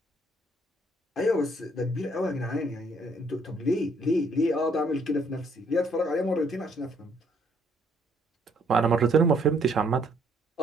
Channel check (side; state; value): both; normal; correlation 0.66